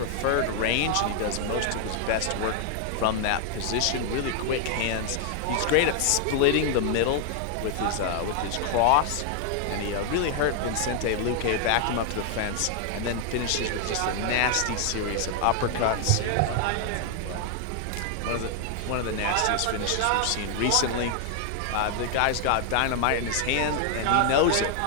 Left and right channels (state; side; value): different; both; correlation 0.00